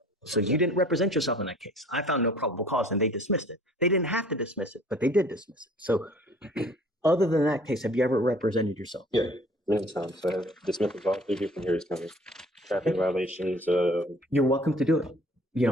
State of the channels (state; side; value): normal; both; correlation 0.52